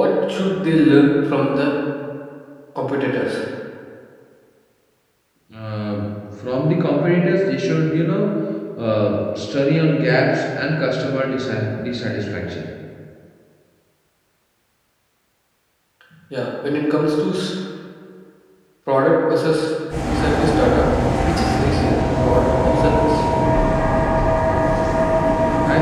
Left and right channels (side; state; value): both; identical; correlation 1.00